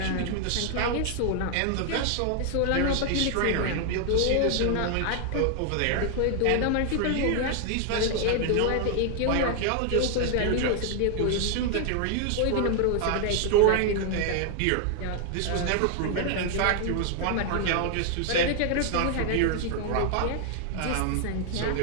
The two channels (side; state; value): both; different; correlation 0.00